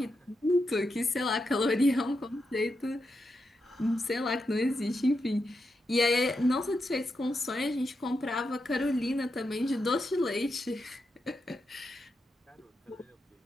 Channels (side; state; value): both; normal; correlation 0.86